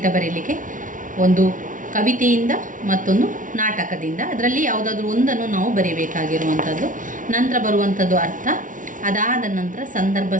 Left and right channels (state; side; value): late; left; 0.38 ms